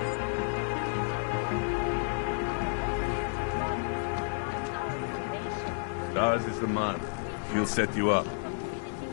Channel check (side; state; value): right; silent; digital silence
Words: Stars is the man. He'll set you up.